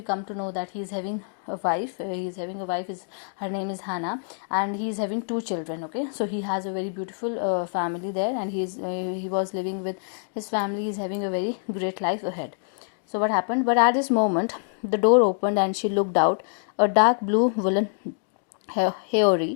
come to know that he is having a wife. Her name is Hannah, and he is having 2 children. Okay, so he has a very beautiful family there, and he was living with his family. He is having a very great life ahead. So what happened? But at this moment, the door opened, and she looked out. A dark blue woolen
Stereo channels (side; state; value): right; silent; digital silence